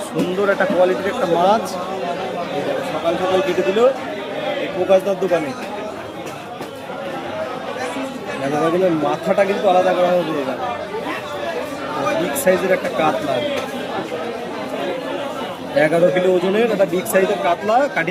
সুন্দর একটা কোয়ালিটির একটা মাছ এই দেখো সকাল সকাল কেটে দিল এই প্রকাশদার দোকানে। মাথাটা কিন্তু আলাদা করা হবে। বিগ সাইজের একটা কাতলা, 11 কিলো ওজনের একটা বিগ সাইজের কাতলা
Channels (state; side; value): identical; both; correlation 1.00